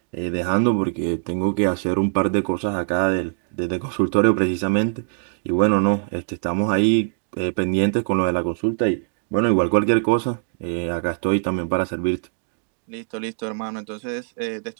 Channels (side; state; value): left; silent; digital silence